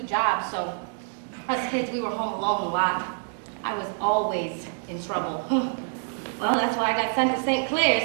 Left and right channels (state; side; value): silent; left; 60 dB below the other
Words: jobs, so us kids, we were home alone a lot. I was always in trouble. Well, that's why I got sent to St.